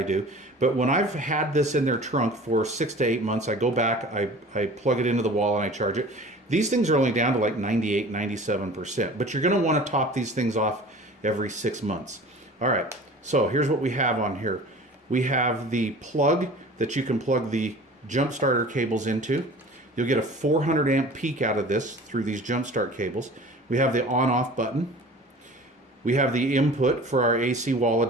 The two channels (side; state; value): both; normal; correlation 0.42